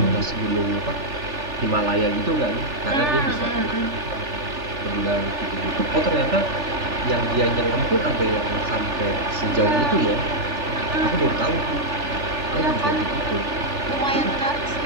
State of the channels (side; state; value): left; late; 3.4 ms